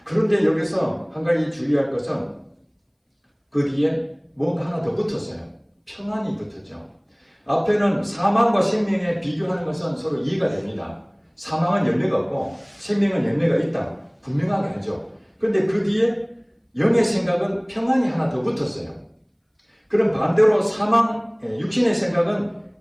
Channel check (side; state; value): both; identical; correlation 1.00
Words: 그런데 여기서 한 가지 주의할 것은 그 뒤에 뭔가 하나 더 붙었어요. 평안이 붙었죠. 앞에는 사망과 생명에 비교하는 것은 서로 이해가 됩니다. 사망은 열매가 없고 생명은 열매가 있다. 분명하게 하죠. 그런데 그 뒤에 영의 생각은 평안이 하나 더 붙었어요. 그럼 반대로 육신의 생각은